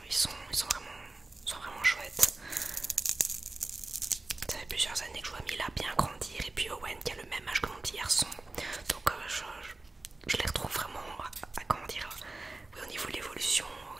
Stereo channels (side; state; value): left; quieter; 3.1 dB